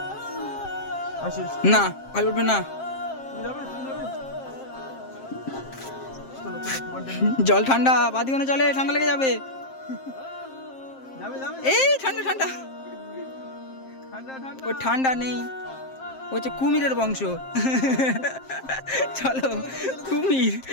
আসিস, না ভাই উঠবে না, তুমি যাবে, তুমি যাবে। চলো চলো, তোমারটা নিয়ে জল ঠান্ডা, বাদিওনে জলে ঠান্ডা লেগে যাবে। যাবে যাবে। এই ঠান্ডা ঠান্ডা, ঠান্ডা ঠান্ডা। ও ঠান্ডা নেই, ও হচ্ছে কুমিরের বংশ। চলো কুমির,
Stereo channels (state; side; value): late; right; 7.6 ms